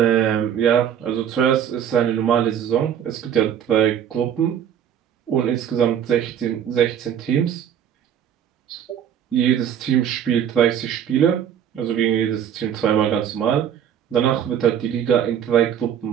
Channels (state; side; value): quieter; left; 9.3 dB